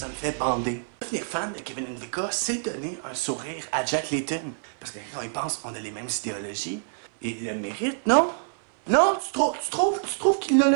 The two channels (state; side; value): silent; left; 59 dB below the other